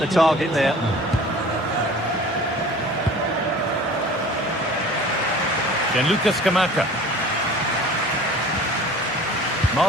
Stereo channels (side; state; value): both; normal; correlation 0.44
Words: target there. Gianluca Scamacca.